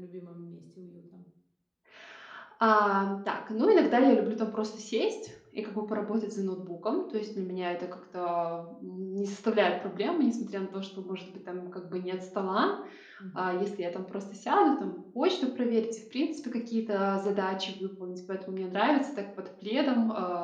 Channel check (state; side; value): identical; both; correlation 1.00